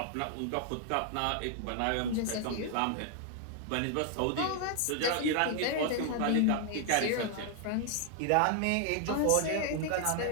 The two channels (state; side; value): different; both; correlation 0.00